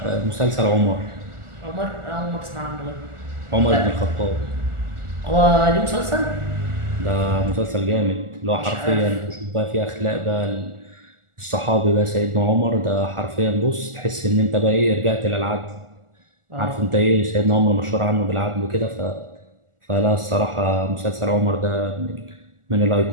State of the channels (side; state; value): left; late; 1.4 ms